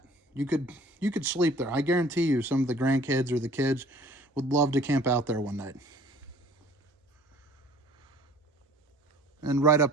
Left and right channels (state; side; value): normal; both; correlation 0.52